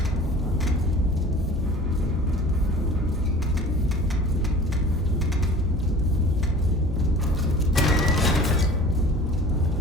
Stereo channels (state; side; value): normal; both; correlation 0.43